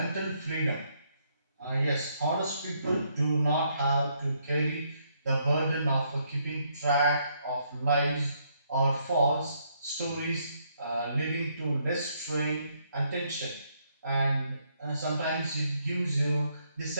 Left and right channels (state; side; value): inverted; both; correlation -0.73